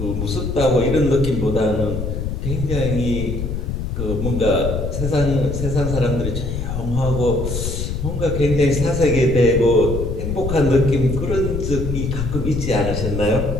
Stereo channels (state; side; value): noise; left; rumble, 3 dB below the sound